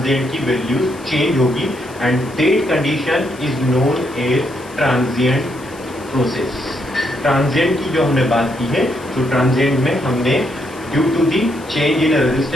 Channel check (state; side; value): noise; left; hiss, 22 dB below the sound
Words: की वैल्यू चेंज होगी and that condition is known as transient process. Transient की जो हमने बात की है तो ट्रांजिएंट में हमने due to the change in